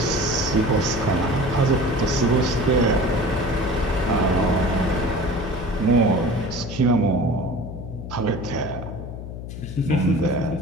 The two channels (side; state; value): left; noise; hum, 9 dB below the sound